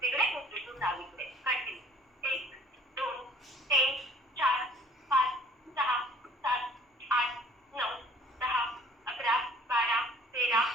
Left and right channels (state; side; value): normal; both; correlation 0.53